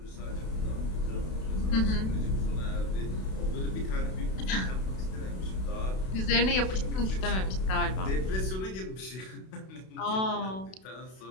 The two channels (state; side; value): late; right; 32 ms